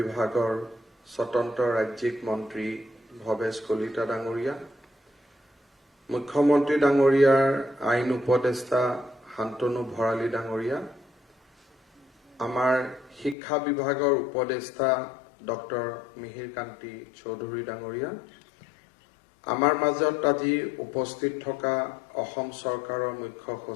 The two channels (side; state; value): right; drops out; at 13.4 s